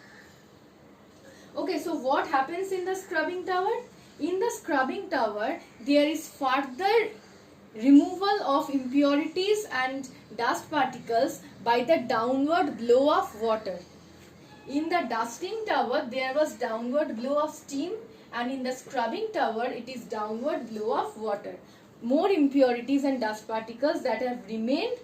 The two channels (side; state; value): both; identical; correlation 1.00